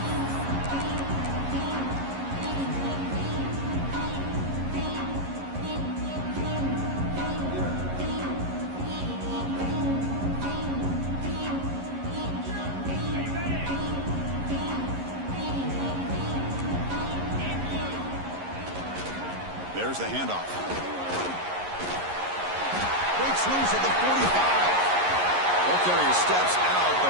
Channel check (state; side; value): late; left; 11 ms